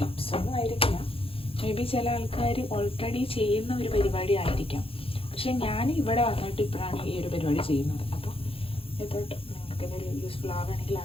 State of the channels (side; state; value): right; late; 0.27 ms